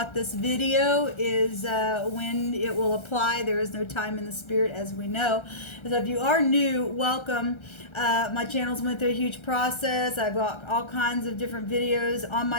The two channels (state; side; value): late; right; 1.3 ms